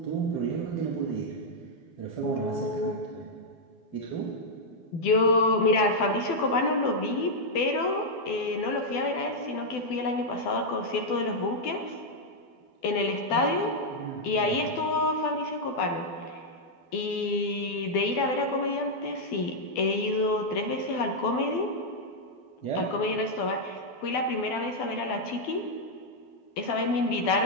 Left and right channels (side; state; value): right; late; 12 ms